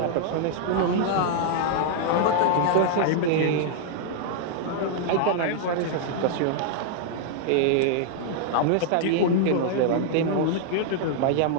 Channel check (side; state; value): both; different; correlation -0.01